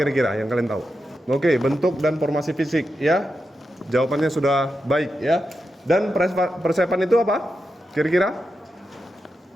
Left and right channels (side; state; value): both; normal; correlation 0.88